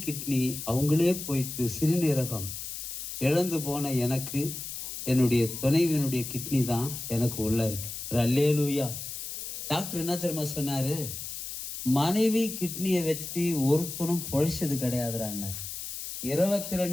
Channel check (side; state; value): left; noise; hiss, 7 dB below the sound